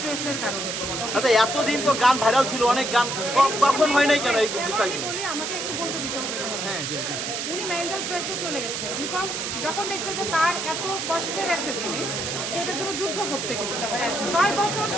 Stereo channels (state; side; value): noise; right; hiss, 3 dB below the sound